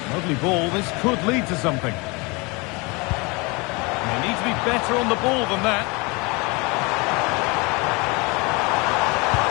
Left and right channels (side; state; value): right; quieter; 27.3 dB